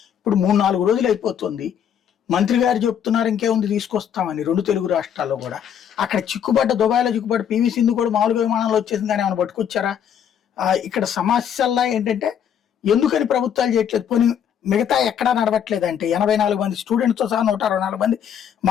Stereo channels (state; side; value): quieter; right; 8.8 dB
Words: ఇప్పుడు 3-4 రోజులు అయిపోతుంది. మంత్రి గారు చెప్తున్నారు ఇంకేముంది తీసుకొస్తామని 2 తెలుగు రాష్ట్రాల్లో కూడా. అక్కడ చిక్కుబడ్డ దుబాయ్లో చిక్కుబడ్డ పివి సింధు కూడా మామూలుగా విమానంలో వచ్చేసింది కానీ ఏమైనా పట్టుకొచ్చారా? ఇక్కడ సమస్యల్లా ఏంటంటే ఎందుకని ప్రభుత్వాలు చేయట్లేదు, పోనీ మిగతా ఎక్కడా నడవట్లేదు అంటే 84 మంది స్టూడెంట్స్తో సహా 164 మంది